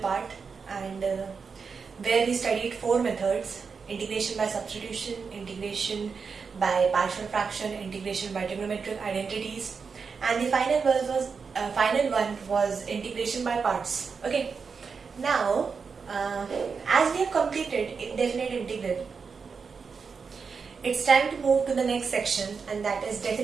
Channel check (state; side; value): quieter; left; 5.4 dB